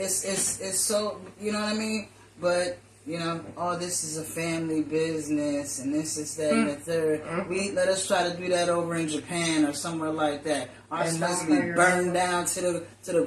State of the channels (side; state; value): both; identical; correlation 1.00